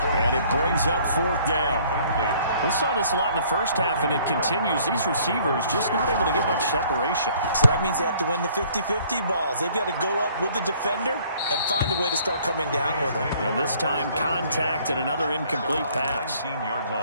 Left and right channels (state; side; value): inverted; both; correlation -0.59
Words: And it brings up 4th down. We saw this a lot in the first half, and it continues. These receivers just not able to get much separation. So that means they have to win the 50-50 balls. They've got to go up with the defender and find a way to start coming down with them. And this time, contact and another incomplete pass. 19-yard